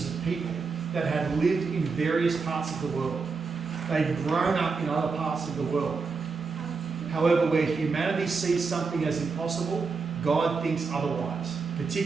of people that had lived in various parts of the world. They'd grown up in other parts of the world. However, where humanity sees something as impossible, God thinks otherwise,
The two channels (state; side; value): quieter; left; 4.7 dB